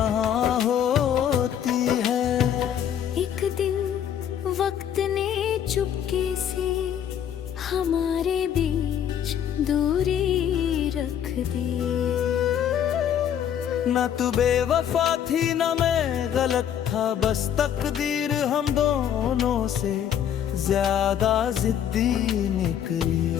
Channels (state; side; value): quieter; right; 9.4 dB